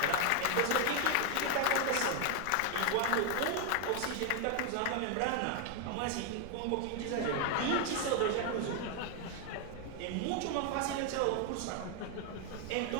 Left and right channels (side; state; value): both; different; correlation 0.01